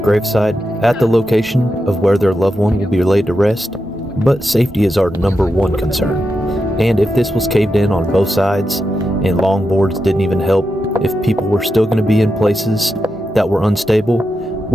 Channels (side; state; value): both; normal; correlation 0.88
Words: at the location of where their loved one will be laid to rest, but safety is our number one concern. And if this was caved in on both sides and long boards didn't even help, if people were still going to be in places that were unstable,